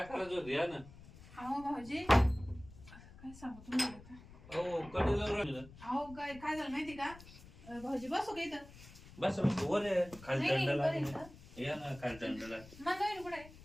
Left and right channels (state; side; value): noise; left; rumble, 19 dB below the sound